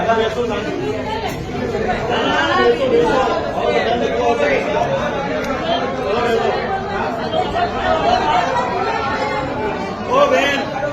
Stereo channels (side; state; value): both; identical; correlation 1.00